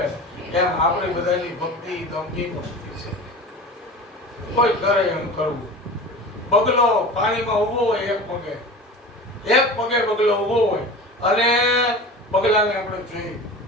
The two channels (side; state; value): both; normal; correlation 0.35